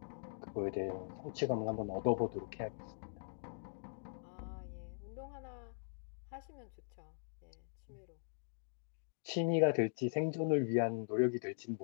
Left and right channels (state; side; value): silent; right; digital silence